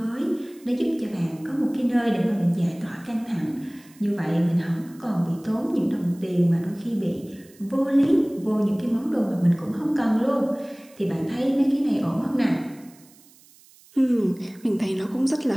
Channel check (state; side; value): noise; right; hiss, 26 dB below the sound